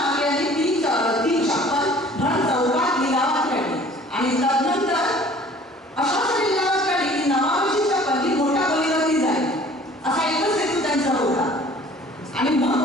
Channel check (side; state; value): both; normal; correlation 0.50